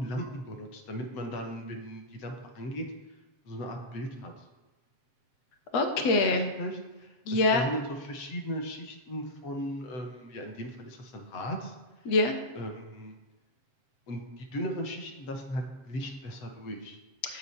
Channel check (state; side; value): late; right; 7.6 ms